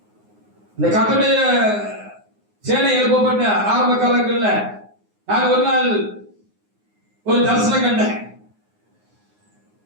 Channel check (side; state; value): left; late; 9.6 ms